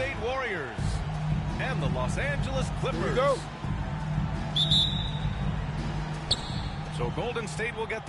Warriors and the Los Angeles Clippers. Here we go. So Golden State will get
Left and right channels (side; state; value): both; identical; correlation 1.00